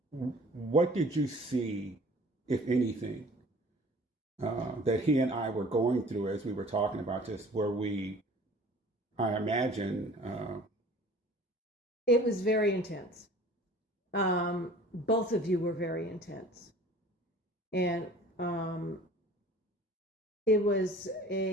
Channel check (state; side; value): normal; both; correlation 0.48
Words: What did you see, if anything, that he and I were going through as we were talking about this, where I imagine, It was very intense. Both of you were very intense. And it was